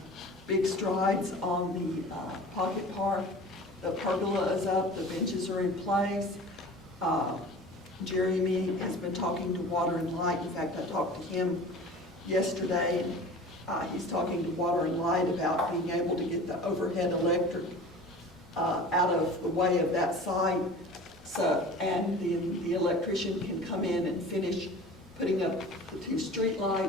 big strides on the Pocket Park. The pergola is up, the benches are in place. Jeremy has been talking to Water and Light. In fact, I talked to him yesterday. He's talking to Water and Light about being able to get the overhead electric out of the way of that site. So, and the electrician can come in and finish putting up the 2 street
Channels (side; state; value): both; normal; correlation 0.40